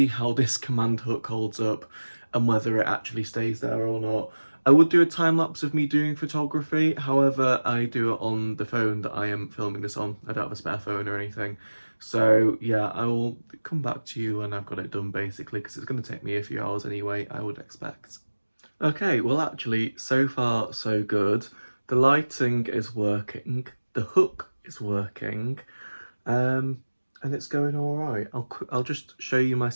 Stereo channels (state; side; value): inverted; both; correlation -1.00